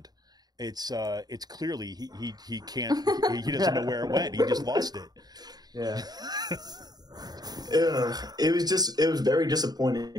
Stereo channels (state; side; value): late; left; 0.19 ms